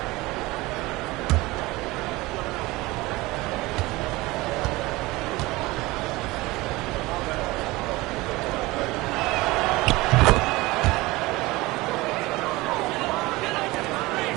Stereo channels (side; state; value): left; quieter; 20.8 dB